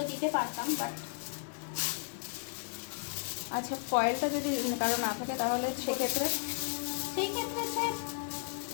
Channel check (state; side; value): silent; right; digital silence